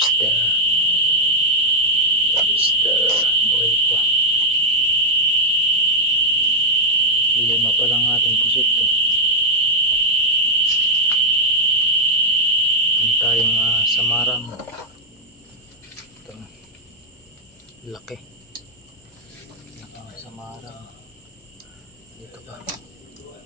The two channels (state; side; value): normal; both; correlation -0.02